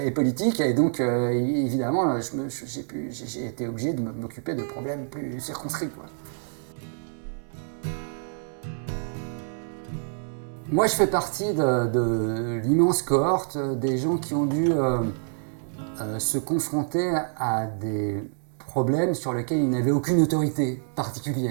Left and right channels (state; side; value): silent; left; 60 dB below the other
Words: et politique, et donc évidemment j'ai été obligé de m'occuper de problèmes plus circonscrits, quoi. Moi je fais partie de l'immense cohorte des gens qui ont dû se confronter à des problèmes sur lesquels ils n'avaient aucune autorité